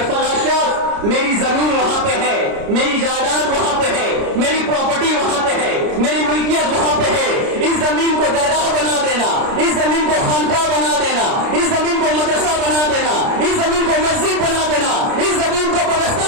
فلاں شخص میری زمین وہاں پہ ہے، میری جائیداد وہاں پہ ہے، میری پراپرٹی وہاں پہ ہے، میری ملکیت وہاں پہ ہے، اس زمین کو درگاہ بنا دینا، اس زمین کو خانقاہ بنا دینا، اس زمین کو مدرسہ بنا دینا، اس زمین کو مسجد بنا دینا، اس زمین کو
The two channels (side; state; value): left; late; 30 ms